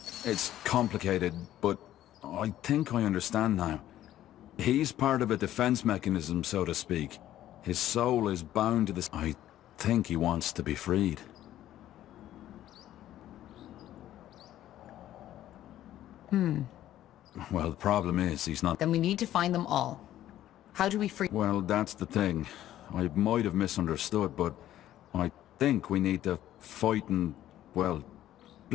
It's complicated, but I think I understand now. He's part of a defense mechanism, so to speak. His soul is bound to this... I think he wants to be freed. Well, the problem is, he's not... Then we need to find them all. How do we free... Well, that's the thing. I might have misunderstood, but I think we need to fight and... Well,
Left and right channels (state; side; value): quieter; right; 12.9 dB